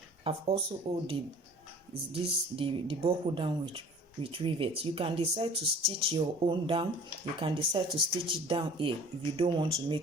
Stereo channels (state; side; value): normal; both; correlation 0.46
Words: I've also held the buckle down with rivets. You can decide to stitch your own down. You can decide to stitch it down here if you don't want to